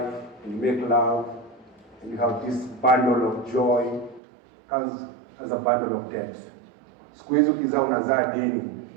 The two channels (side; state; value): left; drops out; at 4.2 s